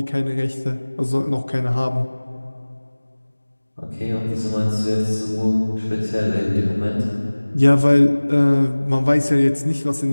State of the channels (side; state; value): both; inverted; correlation -1.00